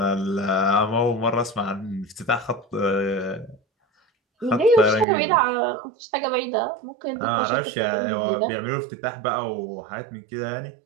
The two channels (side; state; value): left; drops out; at 5.1 s